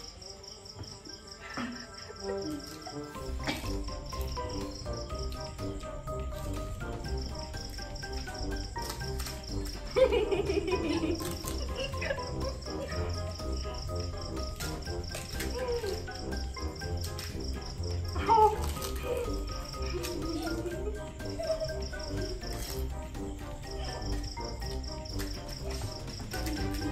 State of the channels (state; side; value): identical; both; correlation 1.00